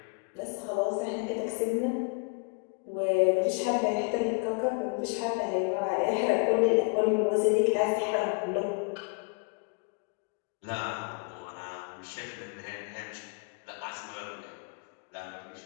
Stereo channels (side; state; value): right; quieter; 35.9 dB